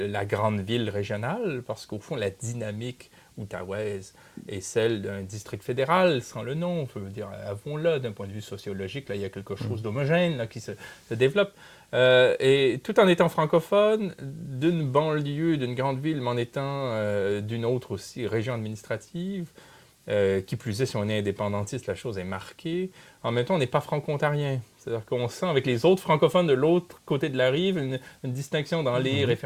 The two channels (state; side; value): identical; both; correlation 1.00